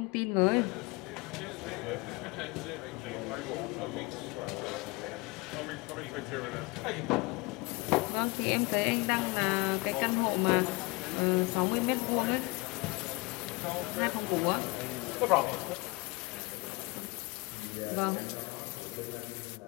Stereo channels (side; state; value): right; quieter; 26.0 dB